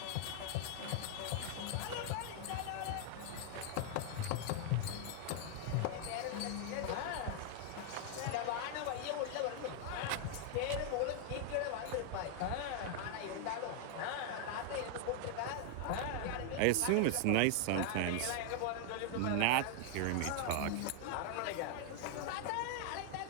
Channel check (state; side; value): different; both; correlation 0.00